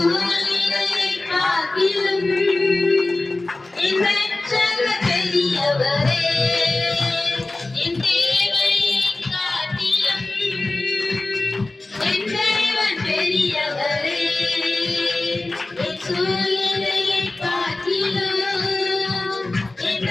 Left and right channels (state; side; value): quieter; right; 3.0 dB